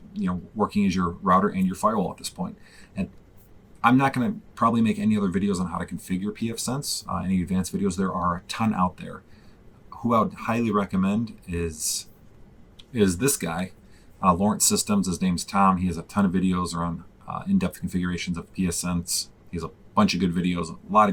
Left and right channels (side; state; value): both; identical; correlation 1.00